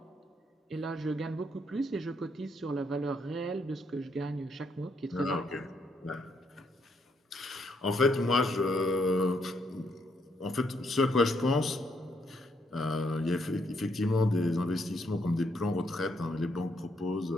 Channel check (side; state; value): both; normal; correlation 0.75